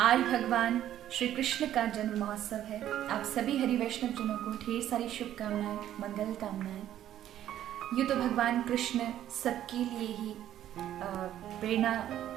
भगवान श्री कृष्ण का जन्म महोत्सव है। आप सभी हरि वैष्णव जनों को ढेर सारी शुभकामनाएं, मंगल कामनाएं। यूँ तो भगवान कृष्ण सबके लिए ही प्रेरणा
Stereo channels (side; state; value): left; quieter; 11.8 dB